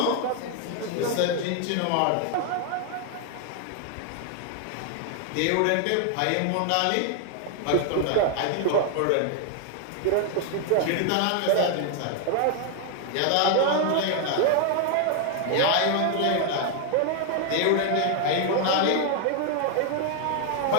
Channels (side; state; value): both; different; correlation 0.00